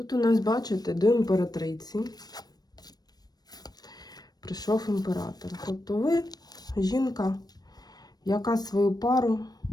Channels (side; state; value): right; late; 0.19 ms